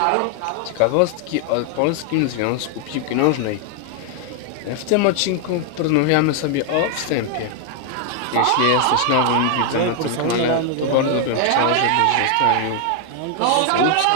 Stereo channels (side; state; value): both; different; correlation 0.00